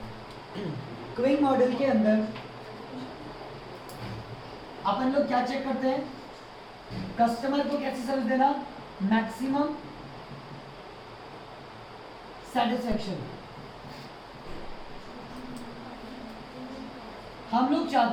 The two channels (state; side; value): identical; both; correlation 1.00